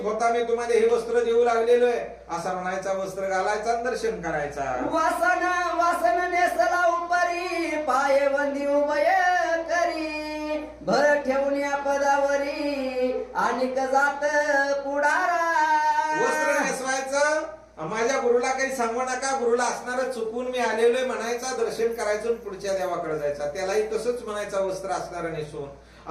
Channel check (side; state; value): both; identical; correlation 1.00